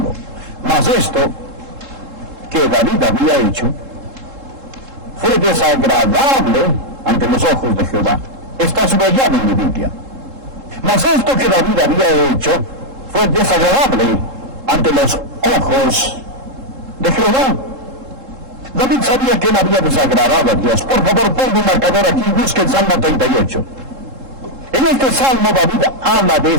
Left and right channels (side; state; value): left; late; 3.7 ms